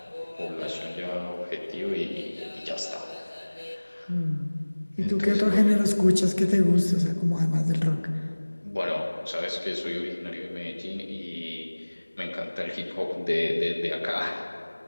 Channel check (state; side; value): inverted; both; correlation -1.00